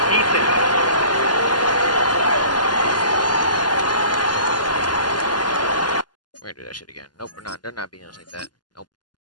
We're gonna do that shit again. Nope, we're not. They're not beating us like that. Nope.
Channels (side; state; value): right; late; 0.70 ms